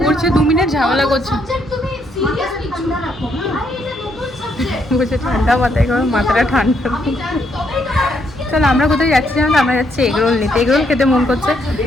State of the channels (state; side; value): normal; both; correlation 0.74